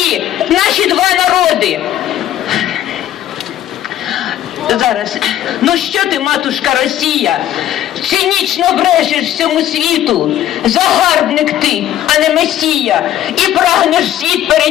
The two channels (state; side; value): quieter; right; 12.1 dB